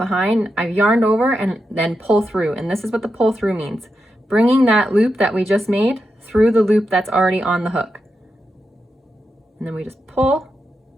behind, I've yarned over and then pull through. And this is what the pull through means. Bringing that loop that we just made through the loop that's already on the hook. And then we just pull,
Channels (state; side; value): normal; both; correlation 0.87